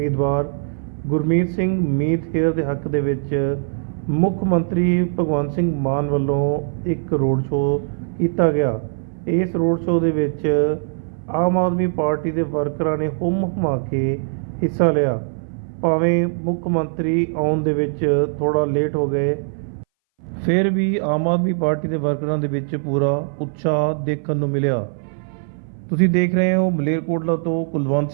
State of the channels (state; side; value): silent; left; 61 dB below the other